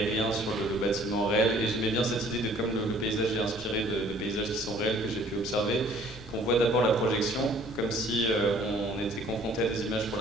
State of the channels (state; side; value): normal; both; correlation 0.55